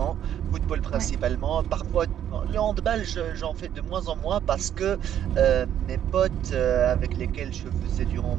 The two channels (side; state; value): left; quieter; 10.3 dB